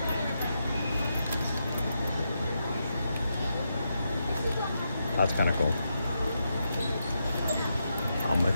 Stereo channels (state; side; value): inverted; both; correlation -0.84